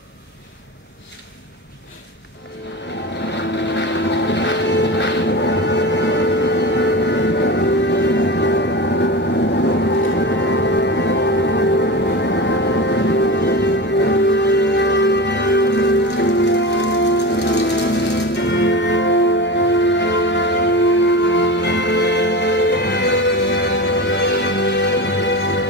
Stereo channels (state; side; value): normal; both; correlation 0.27